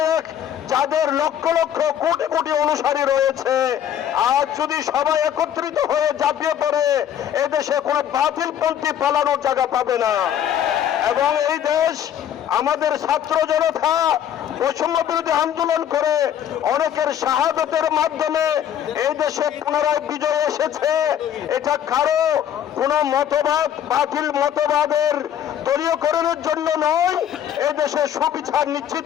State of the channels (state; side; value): quieter; right; 9.9 dB